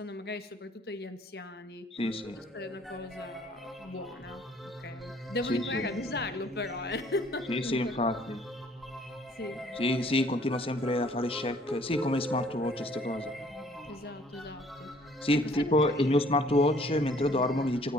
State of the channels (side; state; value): both; normal; correlation 0.58